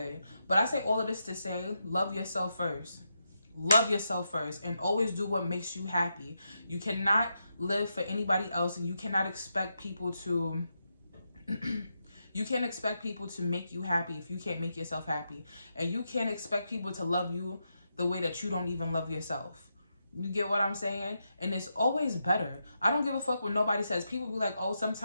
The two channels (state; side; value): inverted; both; correlation -0.84